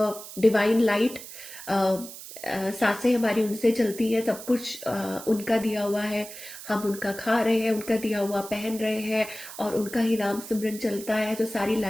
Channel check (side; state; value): right; noise; hiss, 13 dB below the sound